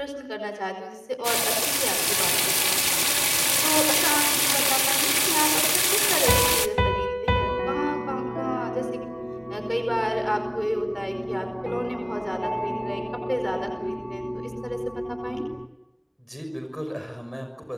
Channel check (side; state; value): both; identical; correlation 1.00